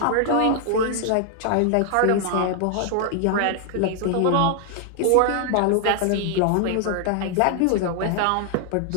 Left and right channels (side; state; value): both; different; correlation 0.00